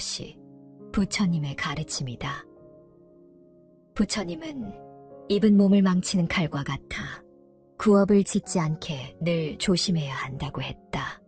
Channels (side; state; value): both; identical; correlation 1.00